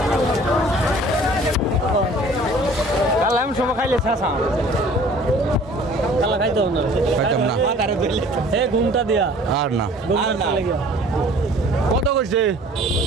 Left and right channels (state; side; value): normal; both; correlation 0.50